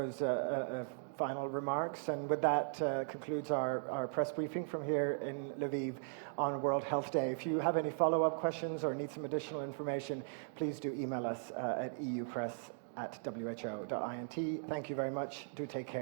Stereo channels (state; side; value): silent; left; digital silence